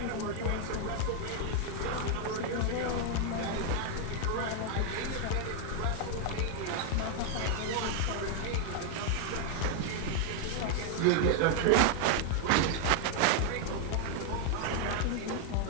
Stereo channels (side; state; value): both; different; correlation 0.00